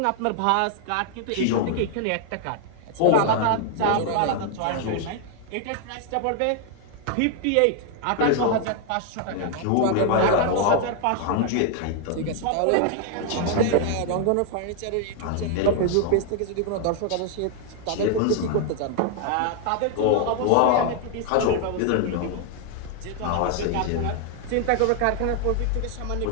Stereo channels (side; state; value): both; different; correlation 0.00